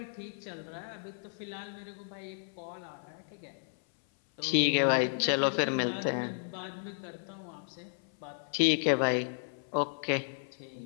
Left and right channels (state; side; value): silent; right; 56 dB below the other